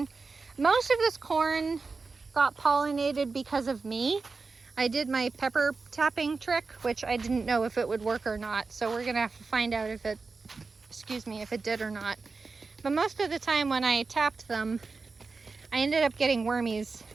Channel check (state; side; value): quieter; left; 4.3 dB